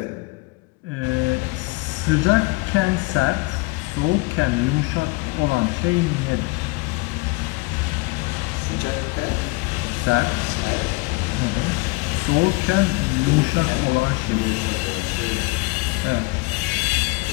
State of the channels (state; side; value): quieter; right; 25.8 dB